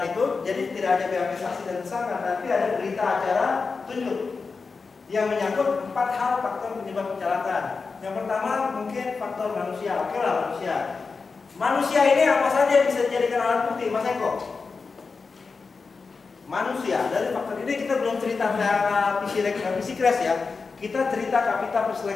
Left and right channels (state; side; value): quieter; right; 4.6 dB